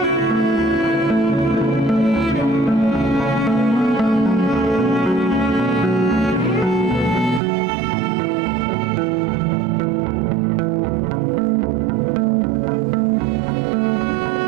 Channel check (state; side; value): drops out; left; at 7.4 s